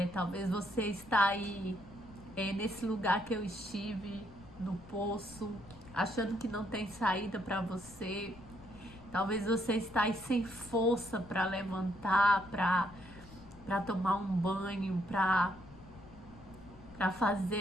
Talvez você está aí nesse lugar que eu estive, no poço, achando que não tem saída para você. Talvez você está aí sem força para levantar, para tomar um banho, para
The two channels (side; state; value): left; noise; rumble, 20 dB below the sound